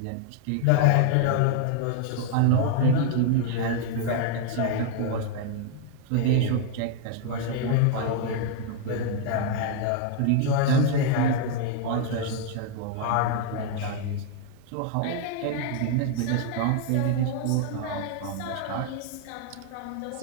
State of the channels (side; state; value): both; different; correlation 0.00